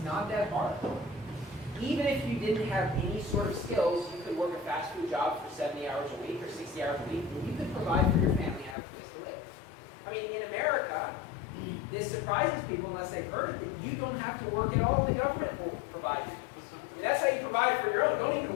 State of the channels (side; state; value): right; drops out; at 8.8 s